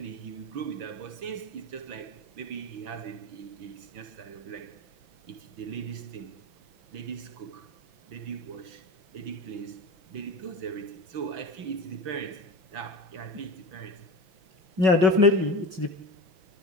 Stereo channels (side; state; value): left; late; 6.0 ms